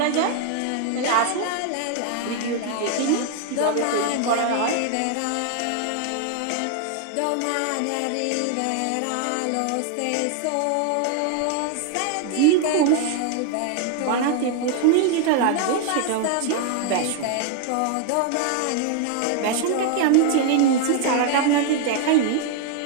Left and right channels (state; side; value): different; both; correlation 0.00